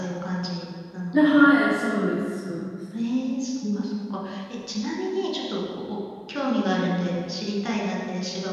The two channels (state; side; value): identical; both; correlation 1.00